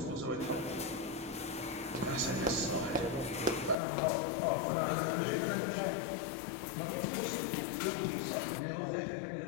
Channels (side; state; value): right; drops out; at 3.8 s